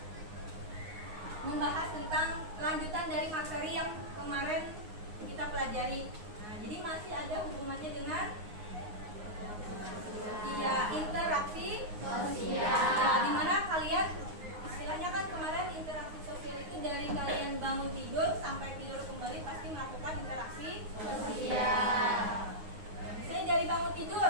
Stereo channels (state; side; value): late; left; 9.6 ms